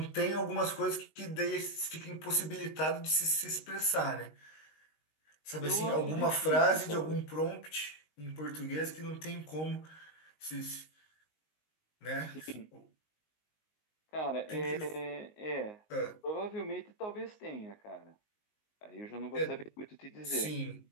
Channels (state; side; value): late; right; 19 ms